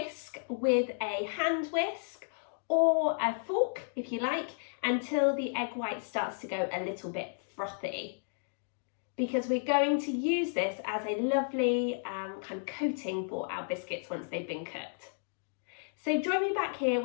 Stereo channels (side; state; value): right; silent; digital silence